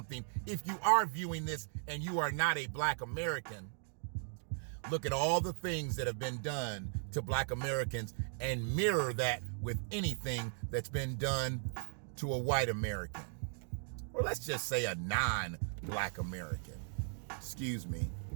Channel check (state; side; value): silent; left; 53 dB below the other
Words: if you are viewing this and you are not a black American, look at all the things that have been done to black Americans and mirror that with anything that's been done to a white American. Or let's just say a non-black American. Excuse me.